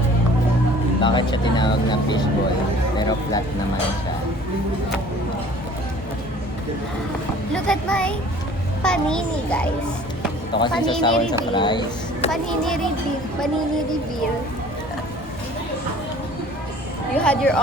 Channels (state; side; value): normal; both; correlation 0.50